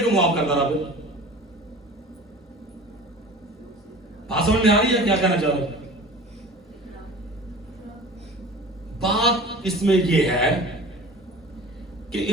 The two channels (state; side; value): normal; both; correlation 0.40